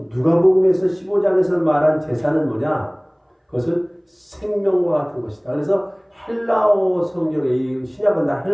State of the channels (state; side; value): identical; both; correlation 1.00